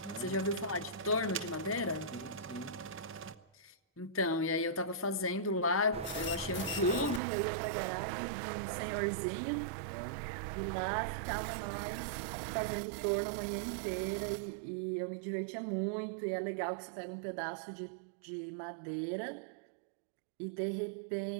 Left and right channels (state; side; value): drops out; left; at 7.2 s